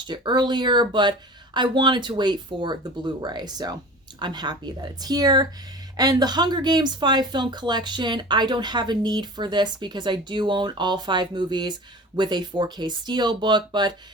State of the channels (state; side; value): normal; both; correlation 0.38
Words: it earlier, but I wanted to wait for the Blu-ray. So I'm happy that it's here. And the Hunger Games 5-film collection, I don't have a need for this because I do own all 5 movies with a 4K Steelbook. But